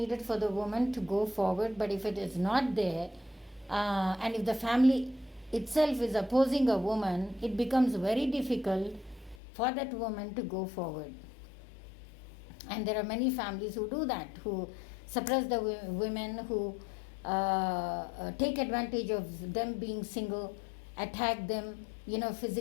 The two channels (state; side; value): drops out; right; at 9.4 s